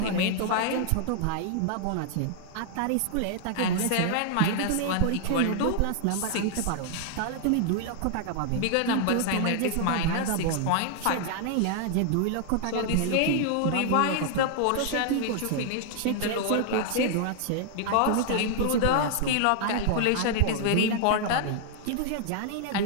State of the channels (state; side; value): different; both; correlation 0.00